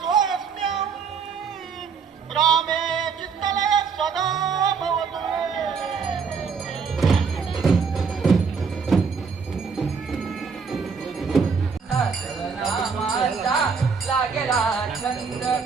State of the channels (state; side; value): quieter; left; 5.6 dB